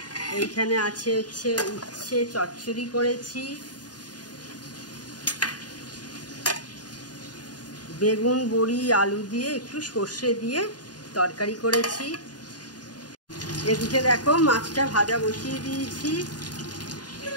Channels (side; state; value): right; late; 0.69 ms